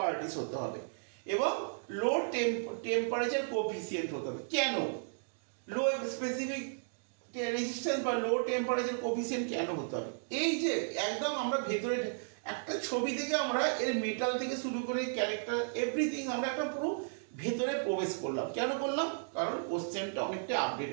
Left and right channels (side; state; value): left; silent; digital silence